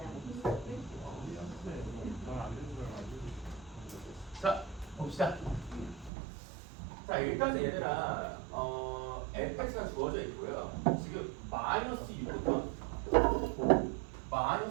자, 봅시다. 자, 일단 얘들아, fx가 주어져 있고요. 지금 마이너스 6부터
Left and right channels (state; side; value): drops out; left; at 6.1 s